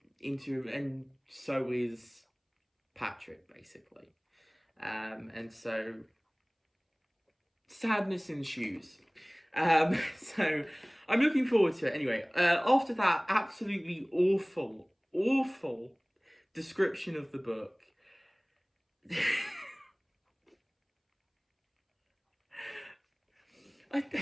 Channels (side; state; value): both; identical; correlation 1.00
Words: into him, and so is Patrick, basically. And so sadness ensues. So I'm looking forward to it. Anyway, after that absolutely awful description of the book, I